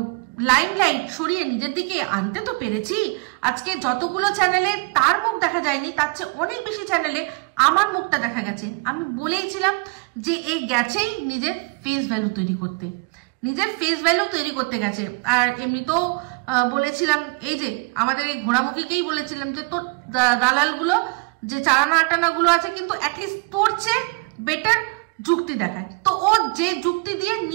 লাইমলাইট সরিয়ে নিজের দিকে আনতে তো পেরেছি। আজকে যতগুলো চ্যানেলে তার মুখ দেখা যায়নি তার চেয়ে অনেক বেশি চ্যানেলে আমার মুখটা দেখা গেছে। আমি বলেইছিলাম যে এই গেছেই নিজের ফেস ভ্যালু তৈরি করতে, নিজের ফেস ভ্যালু তৈরি করতে গেছে। আর এমনিতেও বলেছিলাম এই যে আমাদের এই ঘোড়ামুখীকেই বলেছিলাম যে তোর দালালগুলো যে চারানা আটানা গুলো আছে কিন্তু অ্যাটলিস্ট তোর চেয়ে বেটার যুক্তি দেখায়। তো ও যে যুক্তি দিয়ে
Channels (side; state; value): left; quieter; 30.1 dB